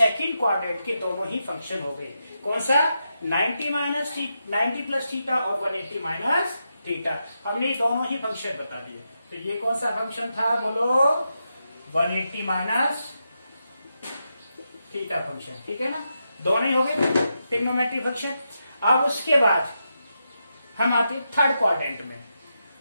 क्वाड्रेंट के दोनों ही फंक्शन हो गए। कौन सा, 90 प्लस थीटा और 180 माइनस थीटा, हमने दोनों ही फंक्शन बता दिए। तो ये कौन सा फंक्शन था, बोलो, 180 माइनस थीटा फंक्शन, ठीक है ना, दोनों ही हो गए ट्रिग्नोमेट्री फंक्शन। अब उसके बाद हम आते थर्ड क्वाड्रेंट में।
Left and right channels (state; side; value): inverted; both; correlation -0.86